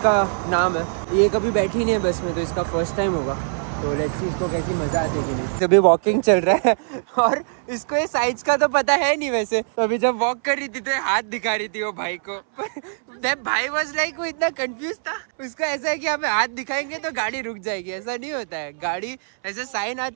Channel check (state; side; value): silent; left; 62 dB below the other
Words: का नाम है। ये कभी बैठी नहीं है बस में, तो इसका फर्स्ट टाइम होगा। तो लेट्स सी इसको कैसी मजा आती है कि नहीं। अभी वॉकिंग चल रहा है और इसको ये साइज का तो पता है नहीं वैसे। तो अभी जब वॉक कर रही थी तो हाथ दिखा रही थी वो भाई को। भाई वाज लाइक, वो इतना कंफ्यूज था। उसका ऐसा है कि हमें हाथ दिखाएंगे तो गाड़ी रुक जाएगी, ऐसा नहीं होता है। गाड़ी ऐसे साइन